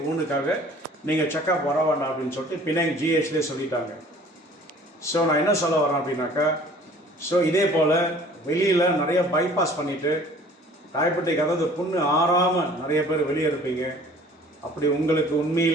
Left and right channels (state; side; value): normal; both; correlation 0.50